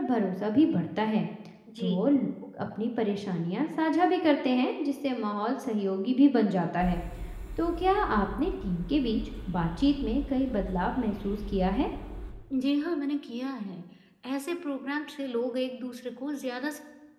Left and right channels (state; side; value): identical; both; correlation 1.00